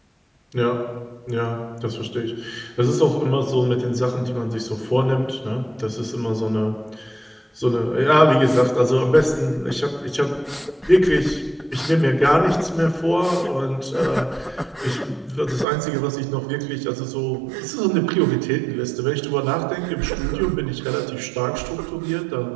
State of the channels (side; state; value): left; drops out; at 15.7 s